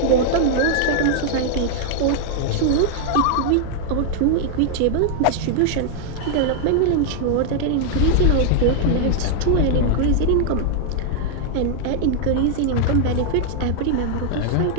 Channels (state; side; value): different; both; correlation 0.00